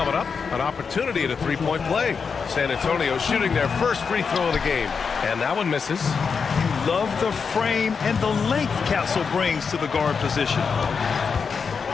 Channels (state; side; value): quieter; right; 5.7 dB